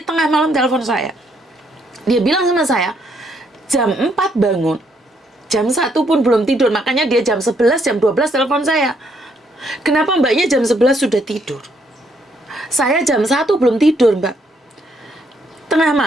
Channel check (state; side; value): normal; both; correlation 0.72